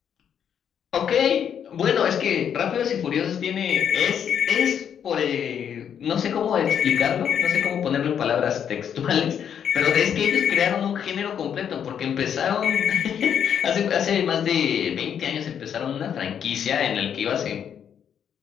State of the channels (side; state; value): right; quieter; 8.4 dB